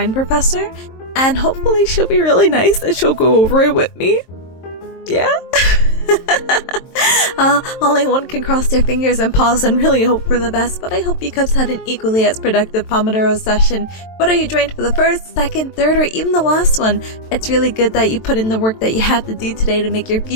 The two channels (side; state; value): right; late; 23 ms